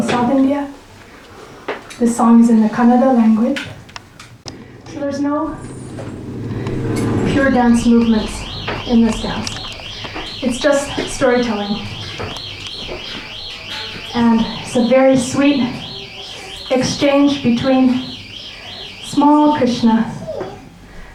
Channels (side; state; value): both; identical; correlation 1.00